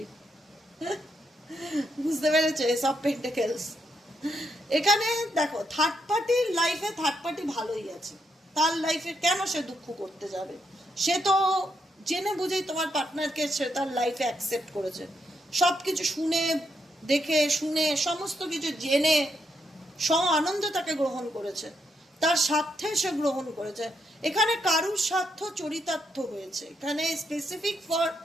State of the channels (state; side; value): normal; both; correlation 0.79